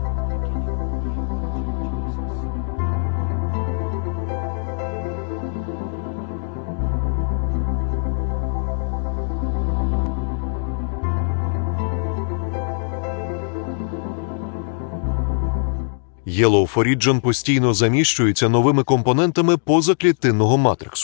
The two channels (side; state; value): right; silent; digital silence